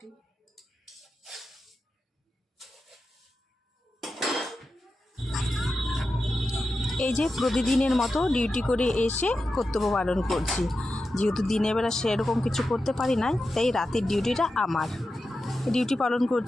এই যে প্রতিদিনের মতো ডিউটি করে এসে কর্তব্য পালন করছি। যেহেতু দিনের বেলা সেরকম কিছু করতে পারি না, তাই রাতের ডিউটিটা আমার। ডিউটি পালন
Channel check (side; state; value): both; normal; correlation 0.91